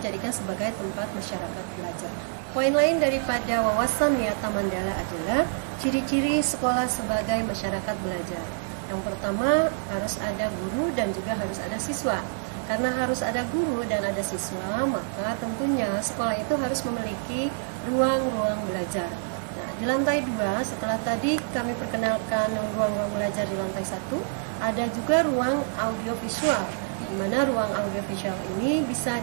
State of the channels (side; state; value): left; silent; 60 dB below the other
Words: sebagai tempat masyarakat belajar. Poin lain daripada wawasan Wiyata Mandala adalah ciri-ciri sekolah sebagai masyarakat belajar. Yang pertama, harus ada guru dan juga harus ada siswa. Karena harus ada guru dan ada siswa, maka tentunya sekolah itu harus memiliki ruang-ruang belajar. Nah, di lantai 2, setelah tadi kami perkenalkan ruang-ruang belajar di lantai 1, ada juga ruang audiovisual, di mana ruang audiovisual ini bisa